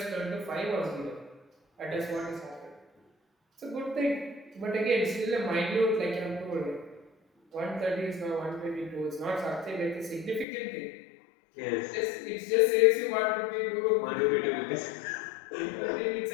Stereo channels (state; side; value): drops out; right; at 10.5 s